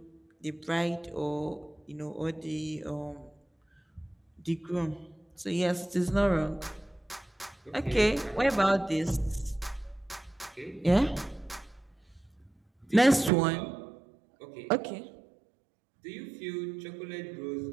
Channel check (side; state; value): left; drops out; at 13.3 s